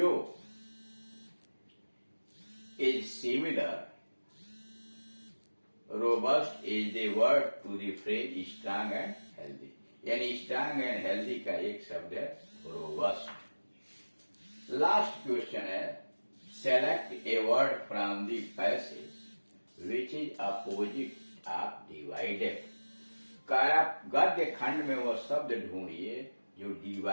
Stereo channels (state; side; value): inverted; both; correlation -1.00